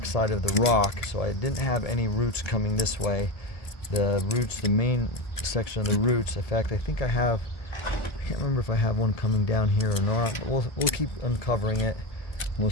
side of the rock, so I didn't have any roots coming this way. The roots, the main section of the roots, in fact I think I can't remember if I have one coming down here or not, but we'll keep uncovering it and we'll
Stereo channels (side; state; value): right; late; 1.7 ms